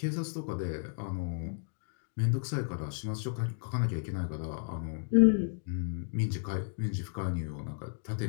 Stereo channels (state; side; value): silent; right; digital silence